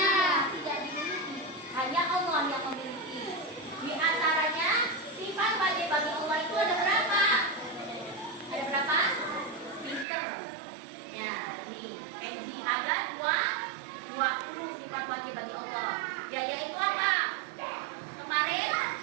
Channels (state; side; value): drops out; left; at 10.1 s